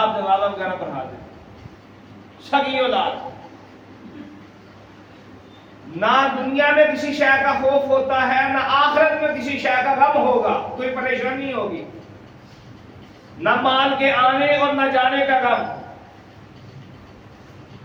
جنازہ وغیرہ پڑھا دیں۔ سگی اولاد، نہ دنیا میں کسی شے کا خوف ہوتا ہے، نہ آخرت میں کسی شے کا غم ہوگا، کوئی پریشانی ہوگی، نہ مال کے آنے اور نہ جانے کا غم،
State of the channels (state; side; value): identical; both; correlation 1.00